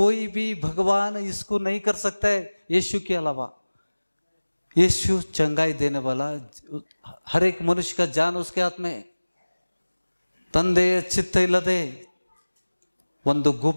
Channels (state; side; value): inverted; both; correlation -1.00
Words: भी भगवान इसको नहीं कर सकता है यीशु के अलावा। यीशु चंगाई देने वाला, हर एक मनुष्य का जान उसके हाथ में। ತಂದೆಯ ಚಿತ್ತ ಇಲ್ಲದೆ ಒಂದು